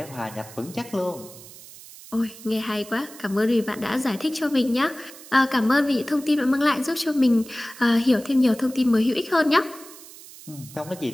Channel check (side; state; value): right; noise; hiss, 18 dB below the sound